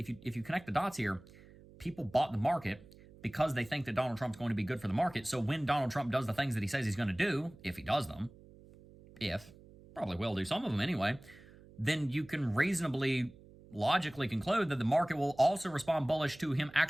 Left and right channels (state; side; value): noise; right; hum, 22 dB below the sound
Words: you connect the dots here, people bought the market because they think that Donald Trump's going to be good for the market. So when Donald Trump does the things that he says he's going to do, if he does them, probably will do some of them anyway, then you can reasonably, logically conclude that the market will also respond bullish to him